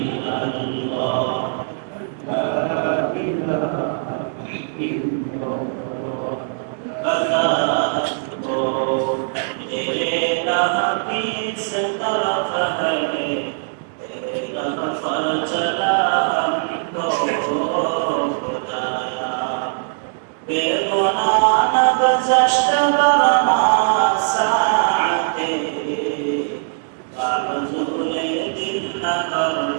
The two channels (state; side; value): silent; left; 65 dB below the other